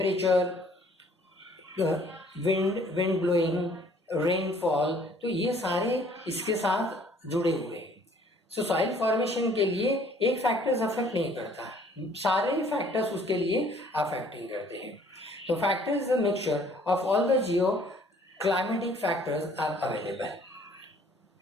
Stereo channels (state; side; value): normal; both; correlation 0.58